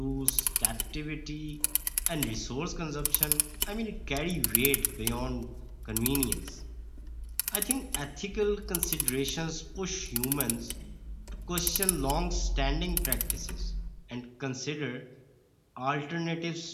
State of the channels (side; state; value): both; identical; correlation 1.00